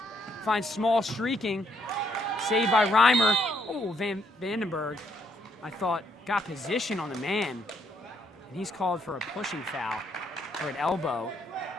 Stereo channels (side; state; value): both; normal; correlation 0.72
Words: Finds Small streaking. Saved by Reimer. Oh, Vandenberg, I thought, got position on the man. And he's called for a pushing foul, or an elbow.